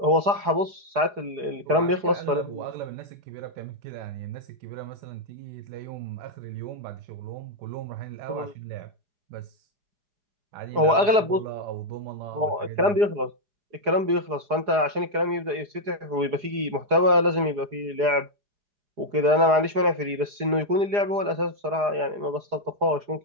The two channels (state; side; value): late; left; 4.8 ms